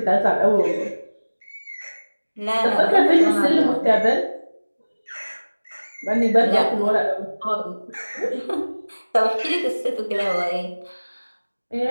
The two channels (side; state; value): both; inverted; correlation -1.00